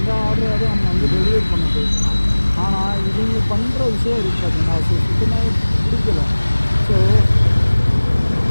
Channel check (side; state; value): both; inverted; correlation -1.00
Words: ஆர்டரை நம்ம வந்து டெலிவரி பண்ண போயிருக்கோம். ஆனால் இவங்க பண்ணுற விஷயம் இருக்குது பார்த்தீங்கன்னா, ஸோ சுத்தமாக பிடிக்கல. ஸோ